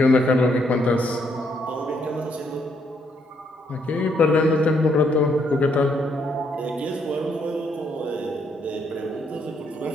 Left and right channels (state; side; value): normal; both; correlation 0.73